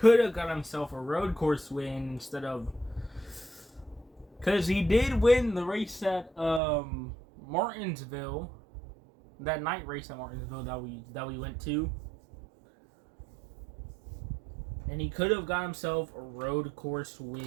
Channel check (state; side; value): drops out; left; at 6.6 s